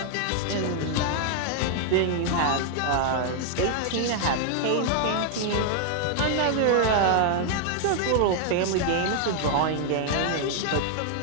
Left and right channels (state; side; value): different; both; correlation 0.00